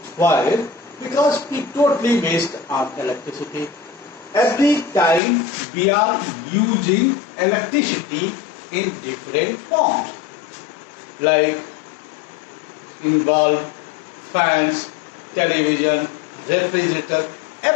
Why? Because we totally waste our electricity. Every time we are using electricity in different forms, like in bulb, fans, television, refrigerator,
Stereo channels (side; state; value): right; drops out; at 5.2 s